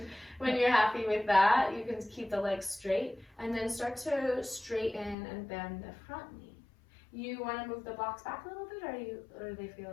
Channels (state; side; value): drops out; right; at 5.2 s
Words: when you're happy with that, you can keep the legs straight and then start to straighten and bend the front knee. You want to move the blocks back a little bit, or do they feel